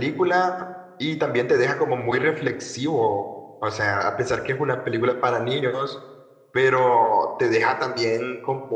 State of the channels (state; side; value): identical; both; correlation 1.00